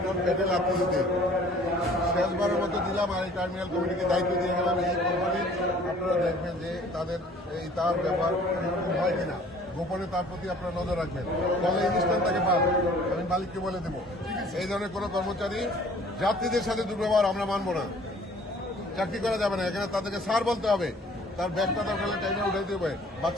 পেটে লাগতে দিতে। শেষবারের মতো দিলাম, আর এই টার্মিনাল কমিটিকে দায়িত্ব দিয়ে গেলাম। এই কোম্পানির আপনারা দেখবেন যে তাদের এই তার ব্যাপার হয় কিনা, গোপনে তার প্রতি আপনারা নজর রাখবেন, ফলে এই স্থানটাকে পান। আমি মালিককে বলে দেবো, এই ধরনের কোনো কর্মচারী যাত্রীদের সাথে দুর্ব্যবহার আমরা মানবো না, চাকরি করা যাবে না। এখানে তাদেরকে স্যার বলতে হবে, তার ব্যাগটা দরকার হলে টাইমে উঠাইতে হবে,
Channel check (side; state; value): both; normal; correlation 0.53